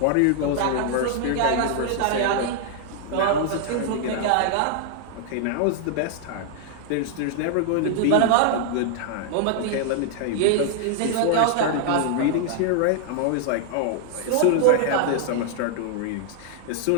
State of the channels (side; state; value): both; different; correlation 0.00